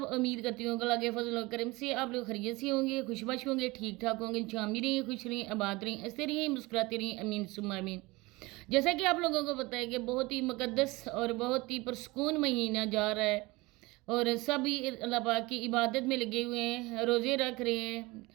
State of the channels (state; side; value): quieter; left; 22.5 dB